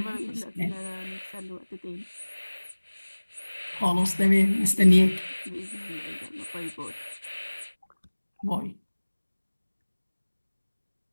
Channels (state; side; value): inverted; both; correlation -1.00